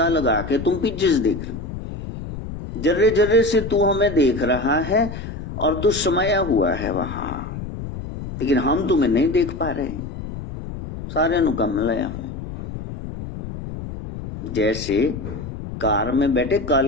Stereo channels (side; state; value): left; noise; rumble, 9 dB below the sound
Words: लगा के तुम पीछे से देख रहे हो। जर्रे जर्रे से तू हमें देख रहा है और तू समाया हुआ है वहां, लेकिन हम तुम्हें नहीं देख पा रहे हैं। सारे नु कम लाया है। जैसे कार में बैठे